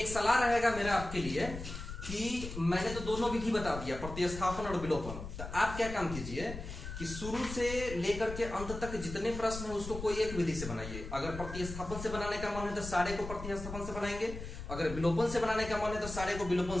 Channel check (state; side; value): noise; left; rumble, 9 dB below the sound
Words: एक सलाह रहेगा मेरा आपके लिए कि मैंने तो दोनों विधि बता दिया, प्रतिस्थापन और विलोपन। तो आप क्या काम कीजिए कि शुरू से लेकर के अंत तक जितने प्रश्न है उसको कोई एक विधि से बनाइए। अगर प्रतिस्थापन से बनाने का मन है तो सारे को प्रतिस्थापन से बनाएंगे, अगर विलोपन से बनाने का मन है तो सारे को विलोपन